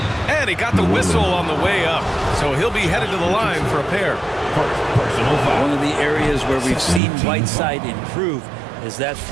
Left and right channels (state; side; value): drops out; left; at 7.0 s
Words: And he got the whistle on the way up. So he'll be headed to the line for a pair. One of the areas where we've seen Whiteside improve is that